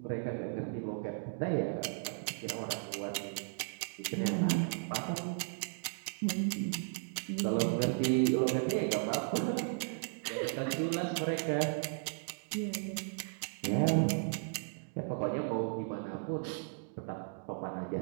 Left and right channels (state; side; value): silent; left; digital silence